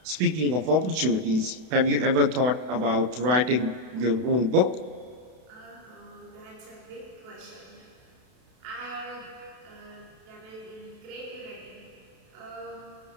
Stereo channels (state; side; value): late; left; 32 ms